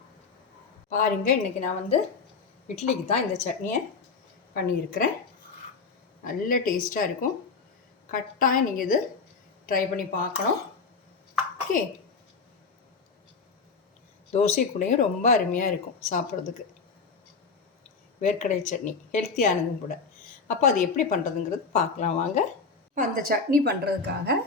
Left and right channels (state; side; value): quieter; right; 4.8 dB